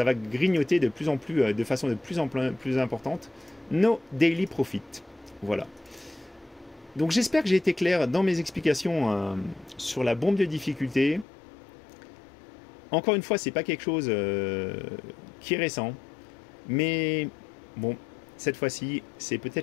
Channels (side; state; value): right; drops out; at 11.2 s